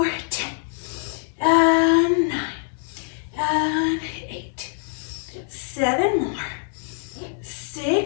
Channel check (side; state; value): right; silent; digital silence